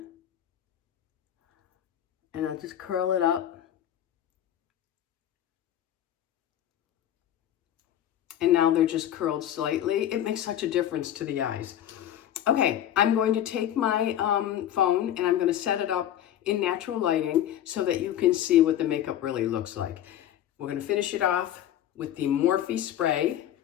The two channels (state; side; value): quieter; right; 11.4 dB